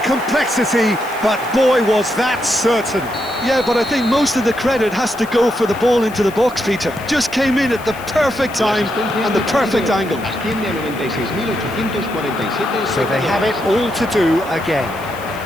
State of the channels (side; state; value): left; noise; hiss, 20 dB below the sound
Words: but boy, was that certain. Yeah, but I think most of the credit has to go for the ball into the box, Peter. Just came in at the perfect time and the perfect angle. So they have it all to do again.